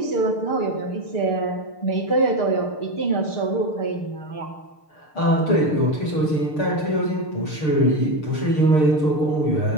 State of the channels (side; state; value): right; late; 6.6 ms